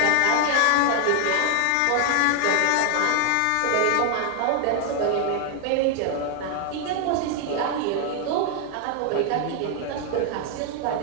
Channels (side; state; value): both; different; correlation 0.00